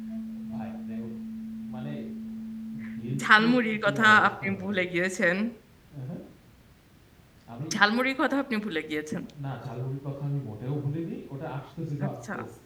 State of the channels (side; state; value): both; identical; correlation 1.00